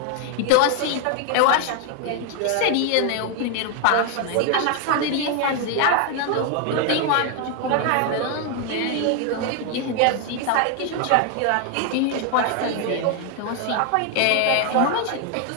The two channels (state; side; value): different; both; correlation 0.01